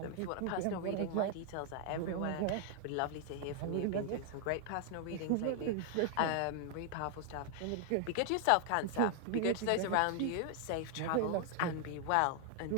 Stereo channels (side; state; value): both; different; correlation 0.00